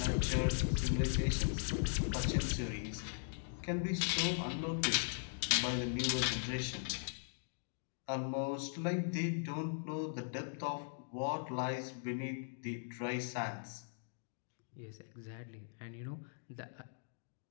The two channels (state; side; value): silent; right; digital silence